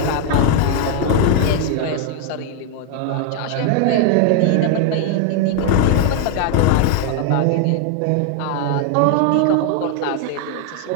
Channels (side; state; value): both; different; correlation 0.00